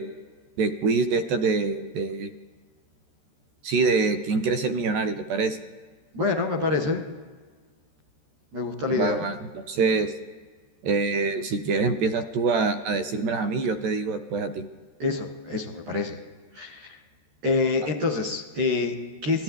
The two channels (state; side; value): late; left; 13 ms